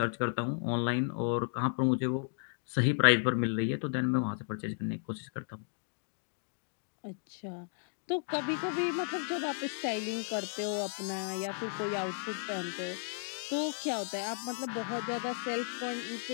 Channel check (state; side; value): silent; right; 55 dB below the other